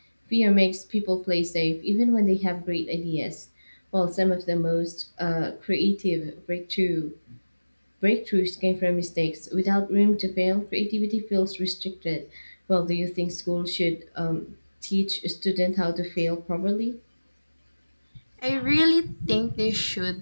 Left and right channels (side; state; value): both; inverted; correlation -1.00